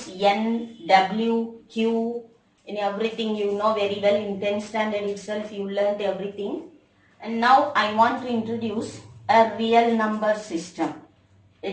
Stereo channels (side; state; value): both; identical; correlation 1.00